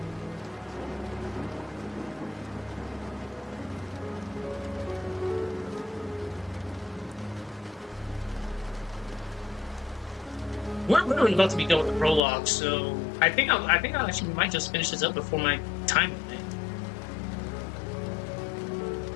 We're literally about to be done with the prologue, so I think I'll actually might just finish this up before my time limit.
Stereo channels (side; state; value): right; drops out; at 12.2 s